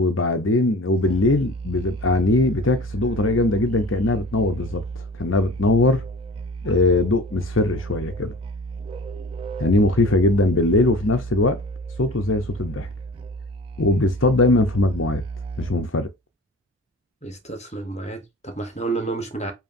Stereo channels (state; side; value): normal; both; correlation 0.41